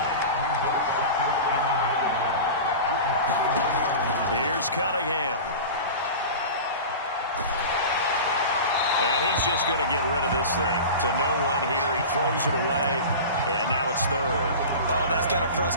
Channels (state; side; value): inverted; both; correlation -0.32